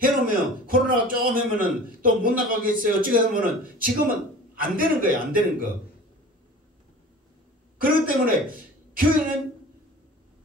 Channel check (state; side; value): normal; both; correlation 0.41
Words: 해놓으면 코로나가 조금 하면은 또 못 나가겠어요. 어찌게 하면은 지금은 안 되는 거예요. 안 되는 거. 그렇기 때문에 교회는